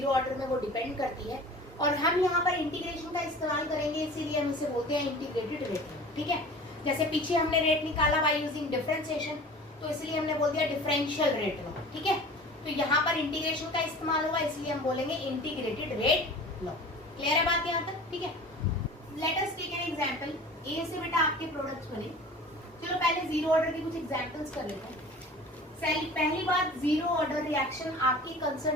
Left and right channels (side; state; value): both; normal; correlation 0.41